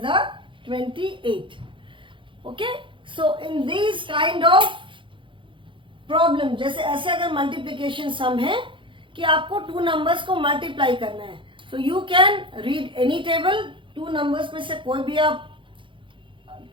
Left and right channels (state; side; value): late; left; 0.24 ms